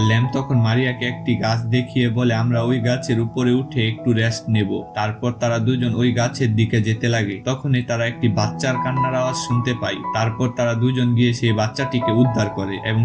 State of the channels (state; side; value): identical; both; correlation 1.00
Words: ল্যাম তখন মারিয়াকে একটি গাছ দেখিয়ে বলে, আমরা ওই গাছের উপরে উঠে একটু রেস্ট নেব। তারপর তারা দুজন ওই গাছের দিকে যেতে লাগে। তখনই তারা একটি বাচ্চার কান্নার আওয়াজ শুনতে পায়। তারপর তারা দুজন গিয়ে সেই বাচ্চাটিকে উদ্ধার করে এবং